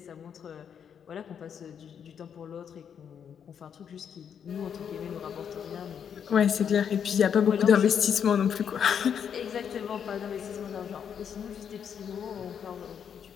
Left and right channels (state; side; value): quieter; right; 7.9 dB